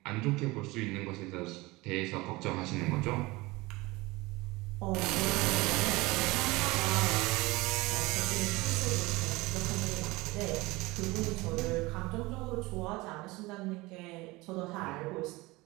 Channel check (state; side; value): quieter; left; 22.0 dB